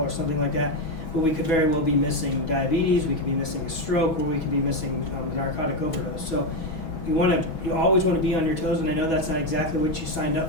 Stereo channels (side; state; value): right; late; 6.2 ms